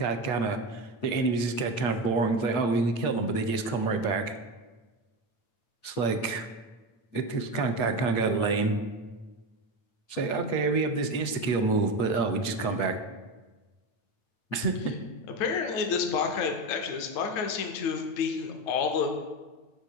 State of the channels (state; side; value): late; right; 8.9 ms